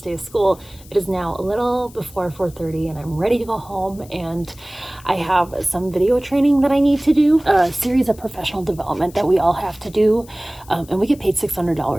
day of school. It is now a little before 4:30 and I'm ready to go home, and I have some video training that I need to do, a series of professional development that we all have to do, and we get paid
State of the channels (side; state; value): left; noise; hiss, 23 dB below the sound